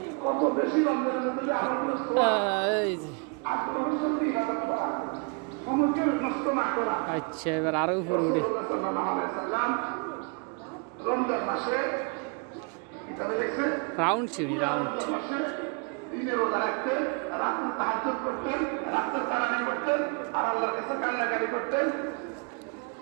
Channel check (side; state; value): left; quieter; 36.0 dB